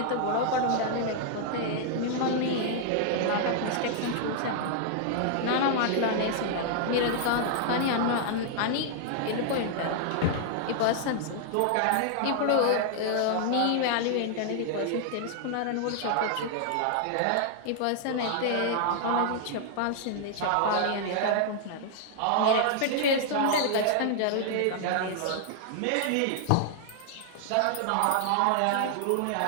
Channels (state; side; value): different; both; correlation 0.00